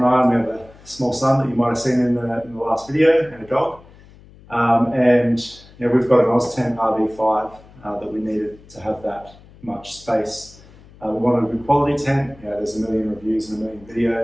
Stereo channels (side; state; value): left; noise; hum, 24 dB below the sound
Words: I, and we have a small son that you might have seen in the last video, and a dog. And you know, we've got an Oztent RV5 that we needed to have that much space. We wanted a good quality tent. You know, there's a million reviews and a million